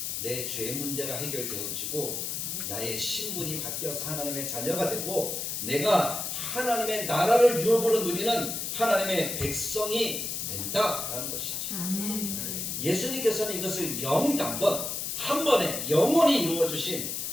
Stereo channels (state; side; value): noise; left; hiss, 3 dB below the sound